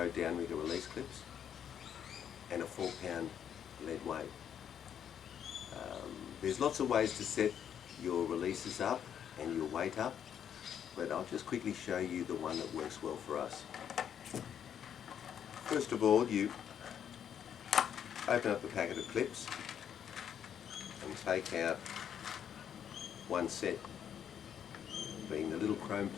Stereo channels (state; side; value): quieter; right; 8.9 dB